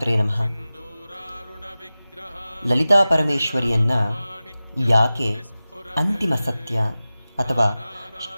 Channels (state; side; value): inverted; both; correlation -0.96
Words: ನಮಃ. ಲಲಿತಾ ಪರಮೇಶ್ವರಿಯನ್ನು ಯಾಕೆ ಅಂತಿಮ ಸತ್ಯ ಅಥವಾ